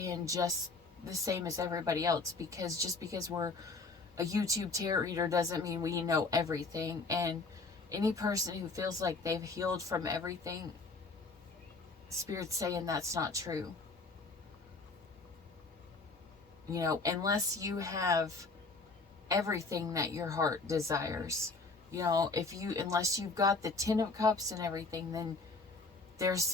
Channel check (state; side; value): quieter; right; 3.8 dB